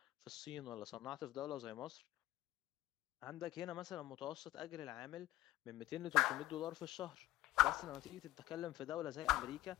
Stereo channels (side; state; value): right; quieter; 16.3 dB